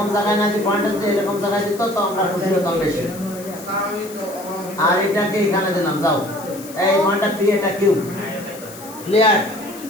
জায়গায় না, যে পয়েন্টটা যদি এরকম জায়গায় দিত তো আমরা খুশি হতাম বেশি। আর এটাকে এখানে দিলাম, যাও এই পয়েন্টটা পি, এটা কিউ। ক্লিয়ার?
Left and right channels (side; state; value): left; noise; hiss, 17 dB below the sound